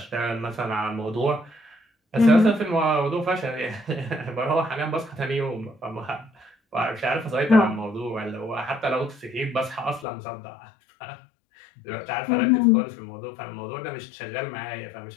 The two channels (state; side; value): drops out; right; at 10.1 s